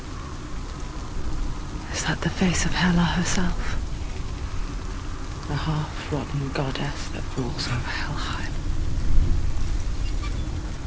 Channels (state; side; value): identical; both; correlation 1.00